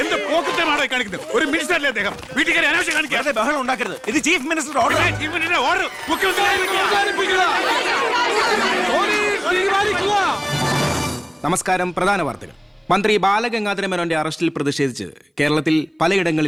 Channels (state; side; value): identical; both; correlation 1.00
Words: എന്ത് പോക്കറ്റമാണോ കാണിക്കുന്നത്? ഒരു മിനിസ്റ്ററല്ലേ അദ്ദേഹം? വീട്ടിൽ കയറി അനാവശ്യം കാണിക്കാതെ ബഹളം ഉണ്ടാക്കരുത്. ഇത് chief minister order. Chief minister order. നമസ്കാരം. പ്രധാന വാർത്തകൾ. മന്ത്രി ബാലഗംഗാധര മേനോന്റെ അറസ്റ്റിൽ പ്രതിഷേധിച്ച് കേരളത്തിൽ